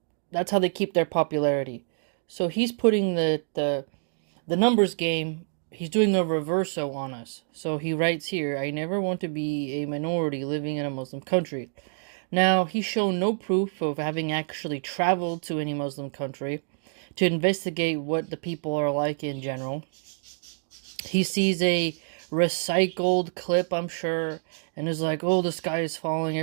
that's how they keep their popularity. So he's putting the numbers game, he's doing a reverso on us. So he writes here, I never want to be a minority living in a Muslim country. Now, he's shown no proof of having actually traveled to any Muslim country to investigate what the people are like in general. He sees a recycled clip, I'm sure, and is like, oh, the sky is falling,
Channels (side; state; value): left; silent; digital silence